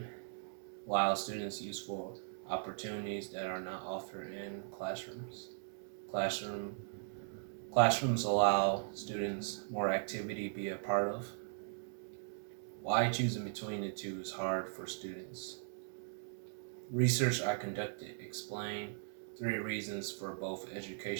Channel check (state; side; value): silent; left; digital silence